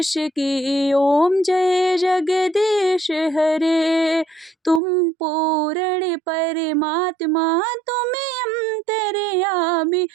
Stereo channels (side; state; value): left; drops out; at 4.8 s